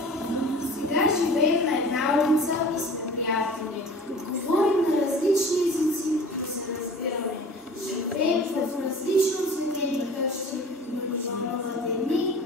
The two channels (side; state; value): both; normal; correlation 0.42